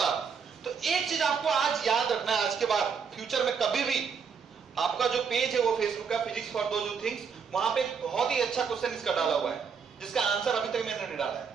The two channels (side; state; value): left; quieter; 6.3 dB